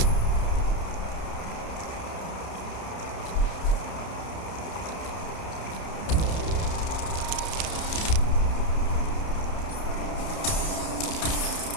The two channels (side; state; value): right; late; 30 ms